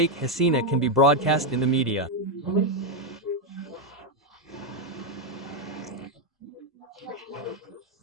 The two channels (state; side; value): normal; both; correlation 0.02